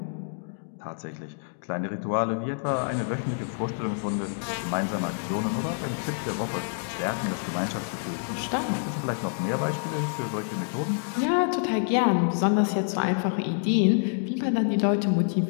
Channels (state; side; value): silent; right; digital silence